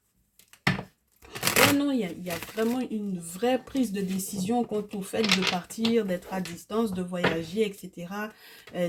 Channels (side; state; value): both; identical; correlation 1.00